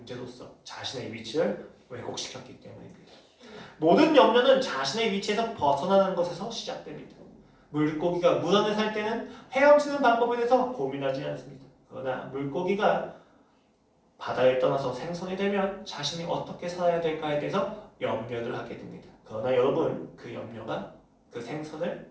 자신의 위치를 왜곡시켰기 때문입니다. 모든 염려는 자신의 위치에서 벗어나는 것에서 시작됩니다. 물고기가 물 안에 살 때는 헤엄치는 방법에 대해서 고민하지 않습니다. 그러나 물고기가 바다를 떠나서 생선이 되면 자신이 어떻게 살아야 될까에 대해서 염려를 하게 됩니다. 그러나 여러분, 그 염려가 그 생선을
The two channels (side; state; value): both; identical; correlation 1.00